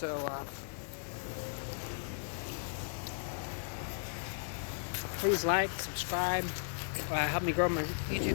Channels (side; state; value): right; silent; 54 dB below the other